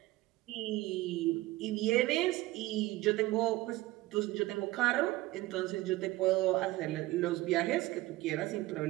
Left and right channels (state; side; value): quieter; left; 18.6 dB